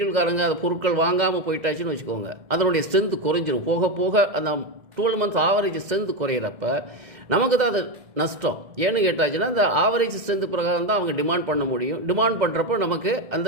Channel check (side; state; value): left; late; 1.7 ms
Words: அந்த பொருட்கள் வாங்காமல் போயிட்டாச்சுன்னு வச்சுக்கோங்க, அதனுடைய ஸ்ட்ரென்த்து குறைஞ்சிரும். போக போக அந்த 12 months ஆவரேஜ் ஸ்ட்ரென்த்து குறையிறப்ப நமக்கு தான் அது நஷ்டம். ஏன்னு கேட்டாச்சுன்னா அந்த ஆவரேஜ் ஸ்ட்ரென்த்து பிரகாரம் தான் அவங்க டிமாண்ட் பண்ண முடியும். டிமாண்ட் பண்ணுறப்போ நமக்கு அந்த